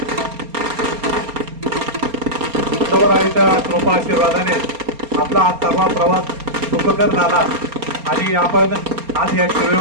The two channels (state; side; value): late; left; 4.3 ms